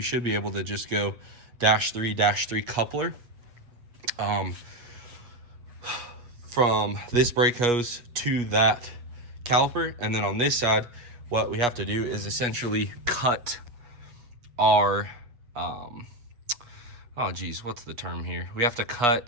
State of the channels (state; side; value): late; left; 8.3 ms